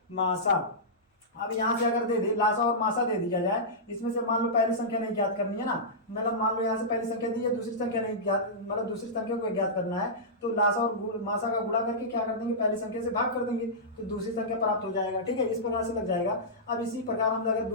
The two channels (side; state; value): both; normal; correlation -0.15